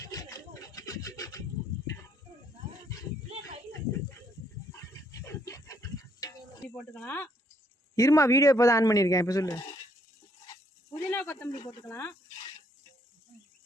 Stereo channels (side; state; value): both; normal; correlation 0.69